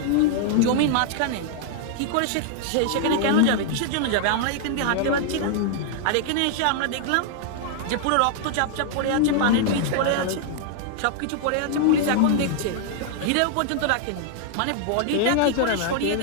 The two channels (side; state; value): both; different; correlation 0.00